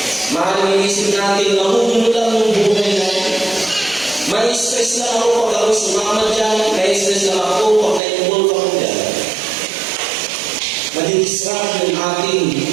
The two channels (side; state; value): left; drops out; at 8.0 s